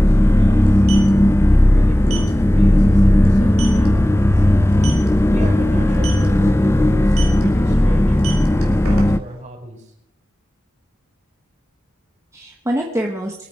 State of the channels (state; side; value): normal; both; correlation 0.97